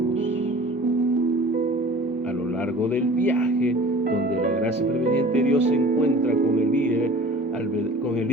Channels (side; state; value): both; normal; correlation 0.44